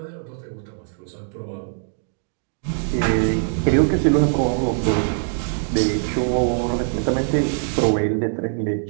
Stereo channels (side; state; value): left; silent; digital silence